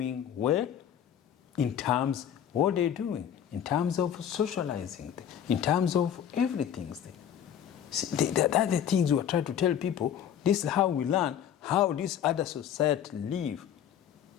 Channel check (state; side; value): quieter; right; 9.4 dB